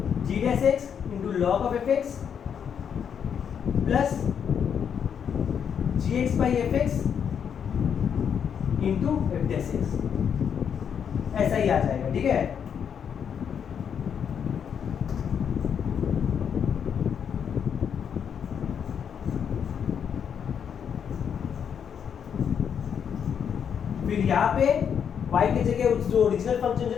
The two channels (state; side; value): quieter; right; 7.7 dB